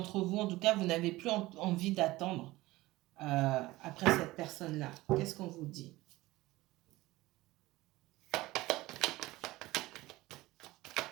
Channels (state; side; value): quieter; left; 18.8 dB